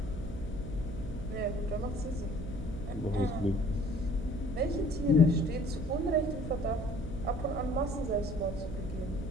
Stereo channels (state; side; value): noise; right; hum, 8 dB below the sound